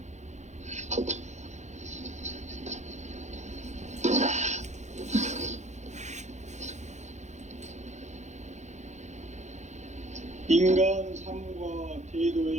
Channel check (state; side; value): late; left; 0.34 ms